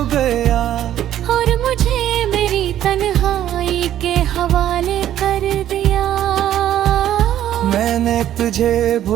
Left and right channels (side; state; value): left; quieter; 11.8 dB